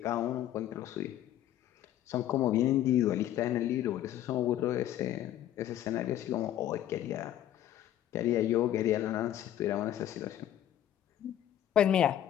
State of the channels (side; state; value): right; quieter; 11.8 dB